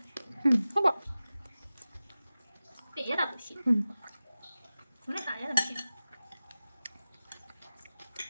ဟုတ်ပါပြင်ရတာမရှိဘယ်နဲ့ခါရတာမရှိ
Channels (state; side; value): inverted; both; correlation -0.96